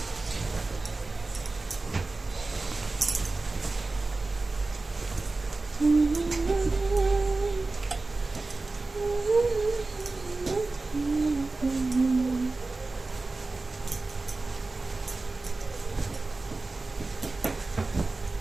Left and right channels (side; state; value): left; quieter; 3.4 dB